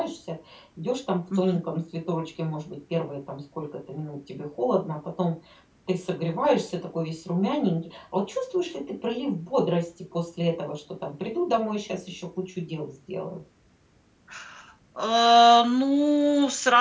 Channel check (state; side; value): identical; both; correlation 1.00